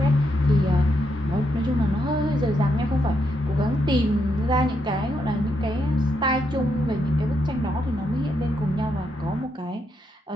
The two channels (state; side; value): normal; both; correlation 0.79